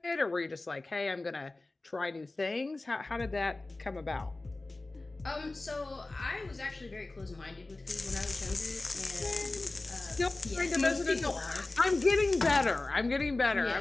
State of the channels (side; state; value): right; quieter; 3.1 dB